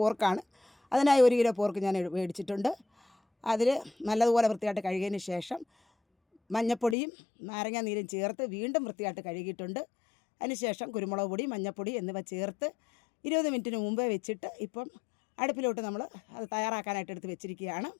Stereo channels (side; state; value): right; drops out; at 7.0 s